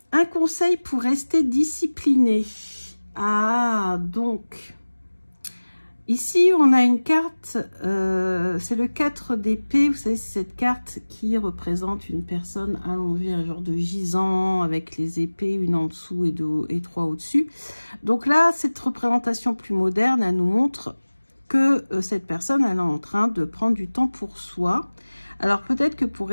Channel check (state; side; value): inverted; both; correlation -1.00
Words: conseil pour rester discipliné. Ah, donc, ici, on a une carte, c'est le 4 d'épée. Vous savez, c'est cette carte qui représente une personne allongée, un genre de gisant, avec les épées, une en dessous et trois au-dessus. Donc là, cette représentation plus moderne, elle nous montre que cette personne, elle est en train de prendre du temps pour soi. Alors peut-être que pour